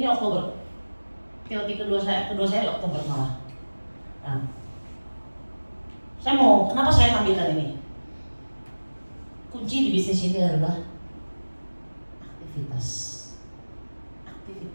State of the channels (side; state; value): both; inverted; correlation -1.00